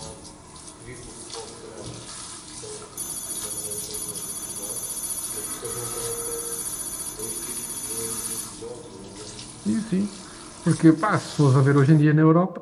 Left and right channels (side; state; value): both; identical; correlation 1.00